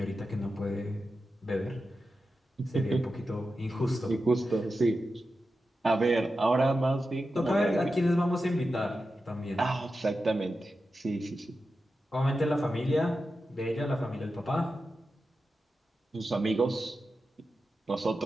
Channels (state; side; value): normal; both; correlation 0.91